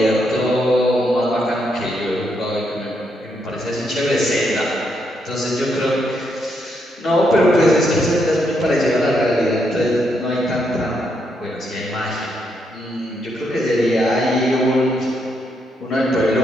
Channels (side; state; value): both; normal; correlation 0.78